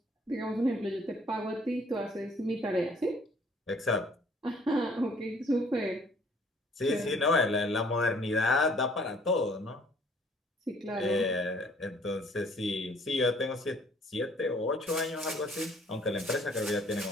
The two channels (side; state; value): both; normal; correlation 0.59